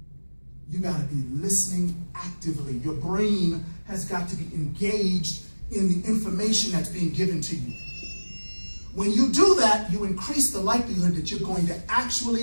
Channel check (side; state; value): both; inverted; correlation -1.00